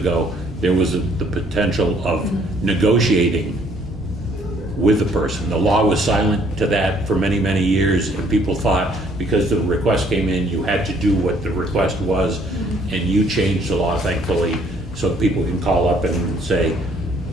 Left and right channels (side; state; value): both; normal; correlation 0.63